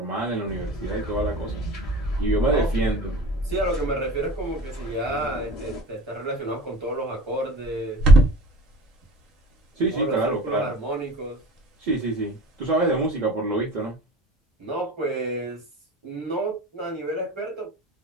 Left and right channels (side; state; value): both; normal; correlation 0.41